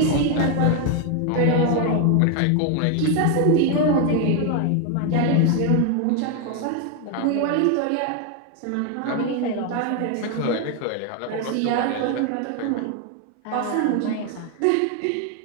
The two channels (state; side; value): different; both; correlation 0.01